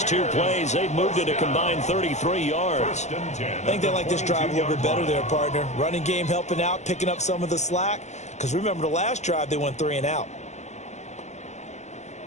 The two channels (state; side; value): late; right; 0.33 ms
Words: 2 plays. They've moved it a combined 33 yards. I think they like this drive a little bit better there, partner. Running game helping out, picking up some of the slack. Because remember, the last drive, they went 3 and out.